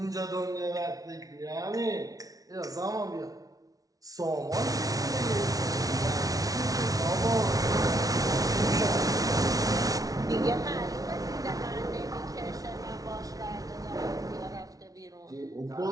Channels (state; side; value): late; left; 0.18 ms